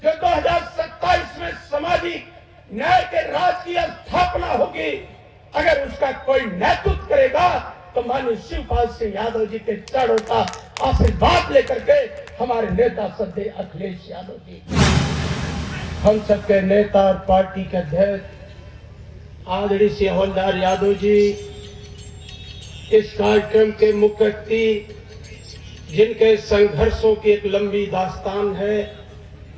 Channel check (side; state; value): both; identical; correlation 1.00